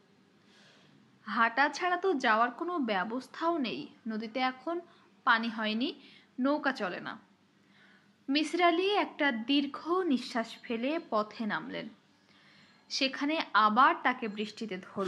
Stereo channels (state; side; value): identical; both; correlation 1.00